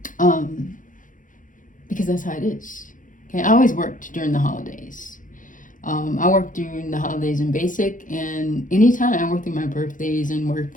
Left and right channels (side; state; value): right; late; 0.38 ms